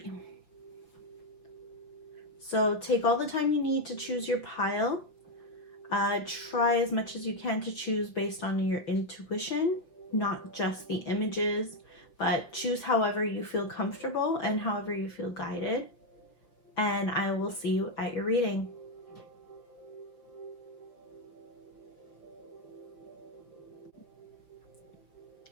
So take all the time you need to choose your pile. Try as much as you can to choose based on your intuition, not just the images, but choose however you feel comfortable and however you feel guided. And I will see you at your reading.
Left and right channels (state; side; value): late; right; 5.7 ms